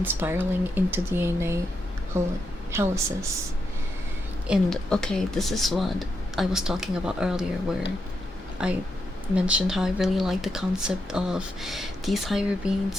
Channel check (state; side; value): normal; both; correlation 0.83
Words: spiraling into DNA helices. And okay, this is what I was talking about earlier, where I mentioned how I really like the concept of these higher